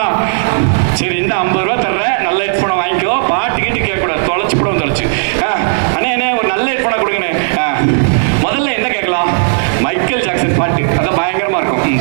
சரி, இந்த 50 ரூபா தர்றேன், நல்ல ஹெட்ஃபோனை வாங்கிக்கோ. பாட்டு கேட்டு கேட்கக்கூடாது, தொலைச்சு போட தொலைச்சு. அண்ணே ஒரு நல்ல ஹெட்ஃபோனை கொடுங்கண்ணே. முதல்ல என்ன கேட்கலாம்? மைக்கேல் ஜாக்சன் பாட்டு, அதான் பயங்கரமா இருக்கும்,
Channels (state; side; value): silent; left; digital silence